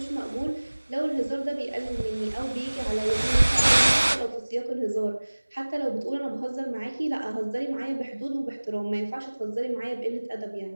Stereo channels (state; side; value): inverted; both; correlation -1.00